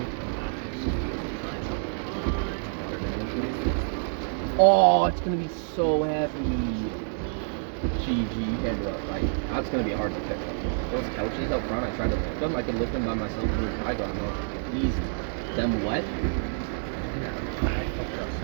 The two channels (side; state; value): left; silent; digital silence